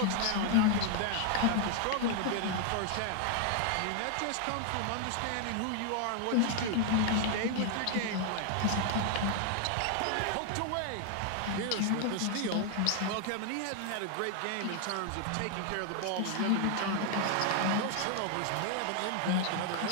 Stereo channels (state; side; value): different; both; correlation 0.00